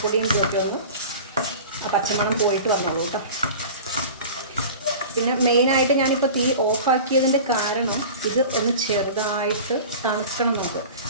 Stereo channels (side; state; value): both; inverted; correlation -0.37